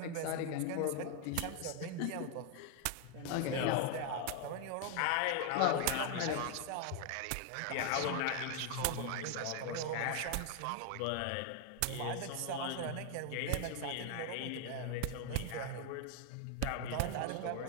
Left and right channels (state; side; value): different; both; correlation 0.00